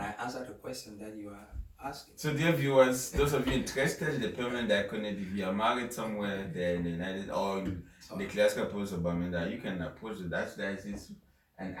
I answer the question that you are asking? So dear viewers, those of you interested in the permanent diaconate, if you are married somewhere there in the United or in the classical province of Bamenda, you can approach the Archdiocese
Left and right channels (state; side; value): identical; both; correlation 1.00